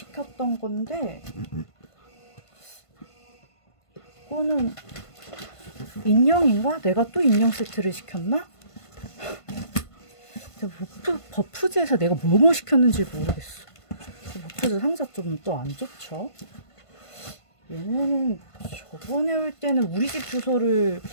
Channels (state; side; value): late; right; 1.5 ms